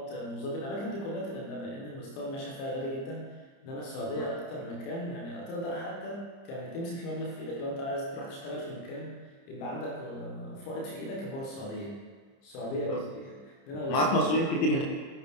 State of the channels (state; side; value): late; right; 30 ms